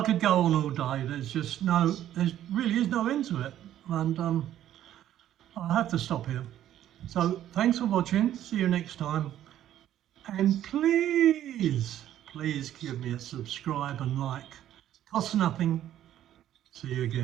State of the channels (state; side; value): quieter; left; 11.8 dB